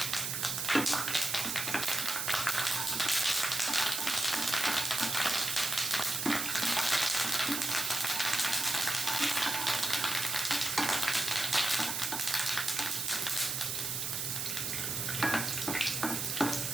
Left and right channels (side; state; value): right; noise; hiss, 2 dB below the sound